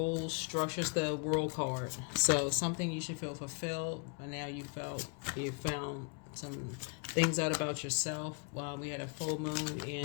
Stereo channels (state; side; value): quieter; right; 34.7 dB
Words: structures, the world card. So something you should feel fulfilled. And now you found some things out about yourself. We had a full moon